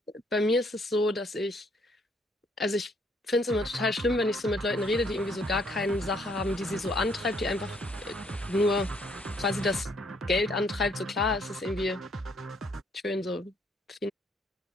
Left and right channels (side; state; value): both; normal; correlation 0.67